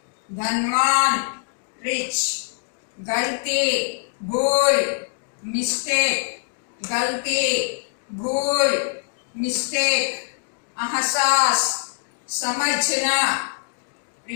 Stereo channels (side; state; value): right; silent; digital silence